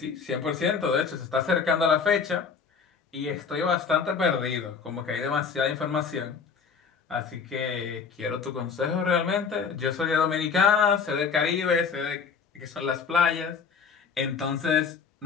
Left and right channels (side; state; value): right; quieter; 5.8 dB